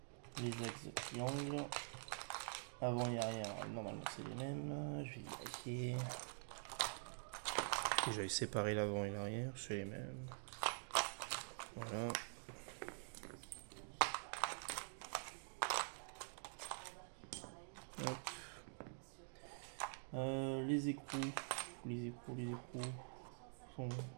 Les axes de triangle. Avant et arrière, normalement c'est les mêmes. Je vais vérifier. J'avais séparé l'avant et l'arrière, c'est les mêmes. Voilà. Hop. Les écrous. Les écrous sont...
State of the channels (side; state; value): left; silent; digital silence